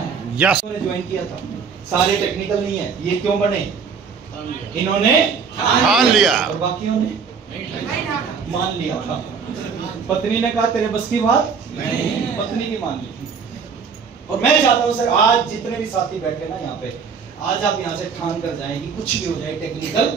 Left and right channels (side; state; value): left; quieter; 5.9 dB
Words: यस ज्वाइन किया था, सारे टेक्निकल नहीं है। ये क्यों बने? इन्होंने ठान लिया और बाकियों ने मान लिया था। पत्नी ने कहा तेरे बस की बात नहीं, पत्नी की मान ली। और मैं चाहता हूँ सर, आज जितने भी साथी बैठे ना यहाँ पे, आज आप यहाँ से ठान कर जाएं कि कुछ भी हो जाए टेक्निकल